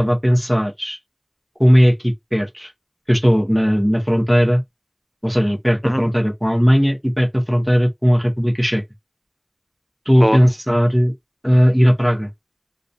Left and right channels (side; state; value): both; identical; correlation 1.00